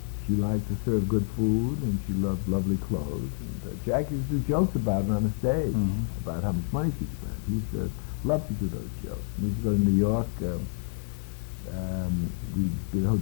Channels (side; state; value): right; silent; 59 dB below the other